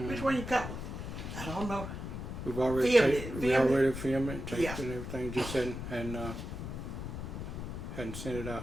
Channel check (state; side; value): noise; left; rumble, 6 dB below the sound